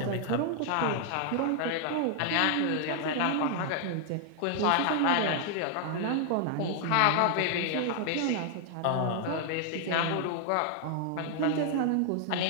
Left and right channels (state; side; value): different; both; correlation 0.00